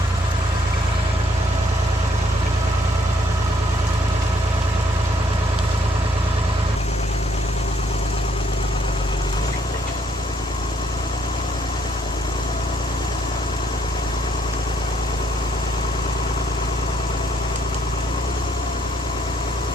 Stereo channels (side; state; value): both; normal; correlation 0.68